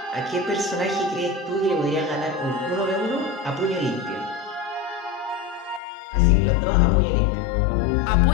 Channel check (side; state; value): right; drops out; at 5.8 s